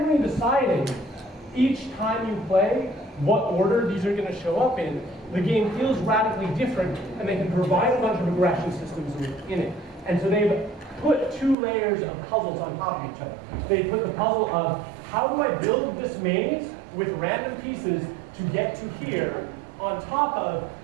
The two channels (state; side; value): drops out; left; at 11.6 s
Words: deciding each time you play what order these are going to show up in, the game feels radically different, and they can provide a bunch of regression systems in it. And so they've put two layers of puzzles on top of each other. They put the puzzle of how do I build this maze with random pieces to get to here on top of